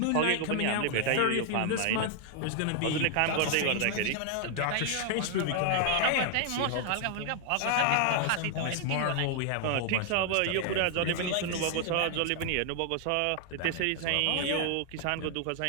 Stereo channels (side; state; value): both; different; correlation 0.00